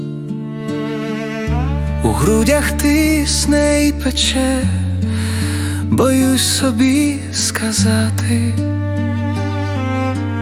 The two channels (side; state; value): both; identical; correlation 1.00